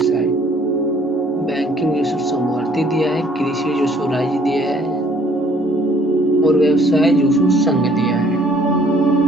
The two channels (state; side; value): normal; both; correlation 0.59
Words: बैंकिंग जो समवर्ती दिया है, कृषि जो राज्य दिया है और व्यवसाय जो संघ दिया है।